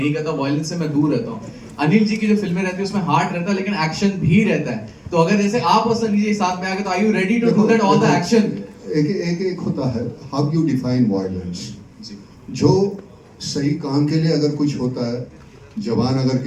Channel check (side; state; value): both; identical; correlation 1.00